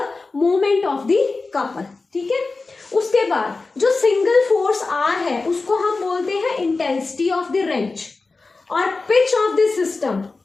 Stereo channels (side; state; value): right; quieter; 3.8 dB